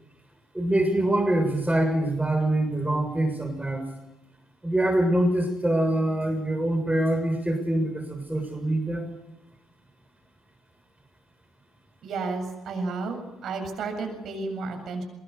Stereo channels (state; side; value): normal; both; correlation 0.88